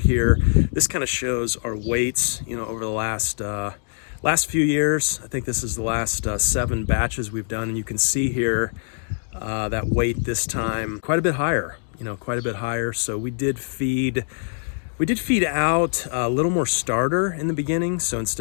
here. This kind of shows our weights, you know, over the last few years. I think this is the last 7 batches we've done, and you can see here that weight this time quite a bit higher, you know, quite a bit higher. So we did feed We did feed out a little more starter in the beginning. So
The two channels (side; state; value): right; silent; digital silence